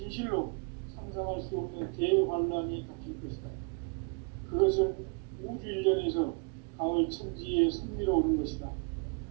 상상할 수 없는 대환란이 닥칠 것이다. 그것은 우주 일전에서 가을 천지에 선미로 오는 것이다.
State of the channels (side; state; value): left; quieter; 35.3 dB